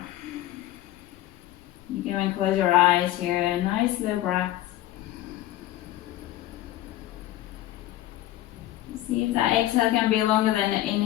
You can close your eyes here. Nice slow breath. See if that exhale can be longer than the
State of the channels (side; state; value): right; quieter; 14.7 dB